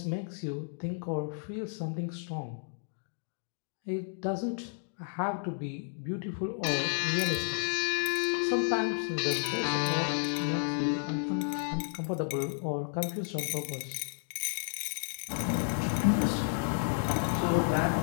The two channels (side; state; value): right; silent; digital silence